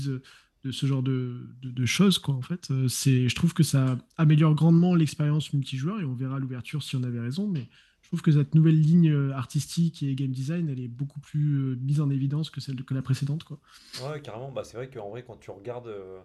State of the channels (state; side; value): identical; both; correlation 1.00